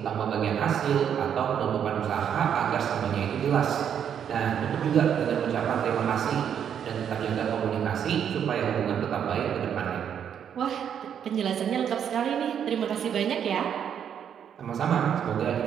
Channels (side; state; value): left; quieter; 8.5 dB